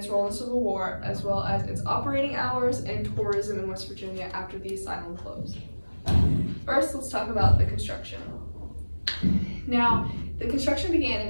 role in the Civil War, as well as its operating hours and tourism in West Virginia after the asylum closed. First, let's talk about the construction. Now, the construction began in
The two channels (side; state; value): both; inverted; correlation -1.00